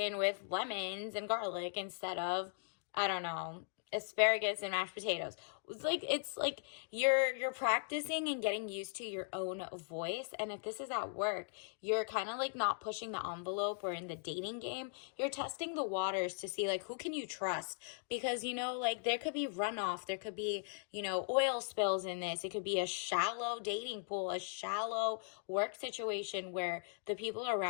with lemons and garlic instead of, I don't know, asparagus and mashed potatoes. It's like you're practicing and getting used to your own voice. And if this is at work, you're kind of like not pushing the envelope, or in the dating game, you're testing the waters to see like who can you trust, because like there could be runoff, there could be oil spills in this. It could be a shallow dating pool, a shallow work situation where the people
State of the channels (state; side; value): silent; right; digital silence